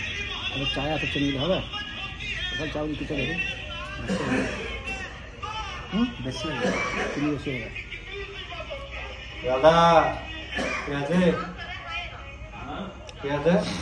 আবার চায় এত চিনি দিলে হবে, ওখানে চাউল কিছু দেবে বেশি হবে, চিনি বেশি হবে। দাদা কে আছে? কে আছে?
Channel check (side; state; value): both; identical; correlation 1.00